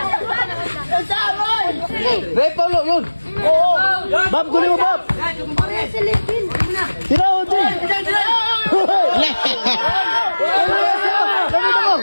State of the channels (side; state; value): both; inverted; correlation -1.00